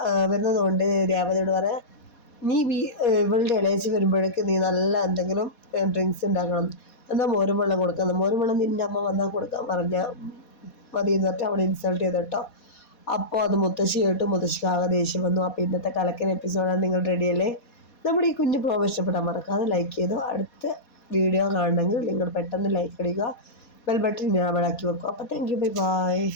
വരുന്നതുകൊണ്ട് രേവതിയോട് പറയാം നീ ഇവളുടെ ഇളയച്ചി വരുമ്പോഴേക്ക് നീ നല്ല എന്തെങ്കിലും ഡ്രിങ്ക്സ് ഉണ്ടാക്കണം, എന്നാൽ മോരും വെള്ളം കൊടുക്കാം, മോരും വെള്ളം നിൻ്റെ അമ്മ വന്നാൽ കൊടുക്കാൻ പറഞ്ഞാൽ മതി എന്ന് പറഞ്ഞിട്ട് അവളെ ഇൻസൾട്ട് ചെയ്ത് കേട്ടോ. അപ്പോൾ അത് മുത്തശ്ശി കേട്ടു. മുത്തശ്ശിക്ക് ആകെ ദേഷ്യം വന്നു. അപ്പോൾ ഇന്നത്തെ കലക്കൻ എപ്പിസോഡാണ്. നിങ്ങൾ റെഡിയല്ലേ? നമ്മുടെ ഈ കുഞ്ഞു പ്രോഗ്രാം ഇഷ്ടപ്പെട്ടാൽ മറക്കാതെ ലൈക്ക് ചെയ്തു. അടുത്ത വീഡിയോ കാണണമെങ്കിൽ നിങ്ങൾ പെട്ടെന്ന് ലൈക്ക് അടിക്കുക, ബെൽ ബട്ടൺ ഞാൻ ആക്കി വെക്കും. അപ്പോൾ താങ്ക് യു, ബൈ ബൈ.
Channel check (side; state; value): right; late; 4.2 ms